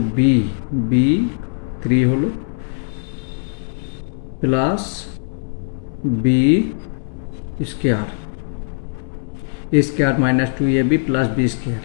B, B 3 হলো plus B square, A square minus 2ab plus B square,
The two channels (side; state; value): right; silent; digital silence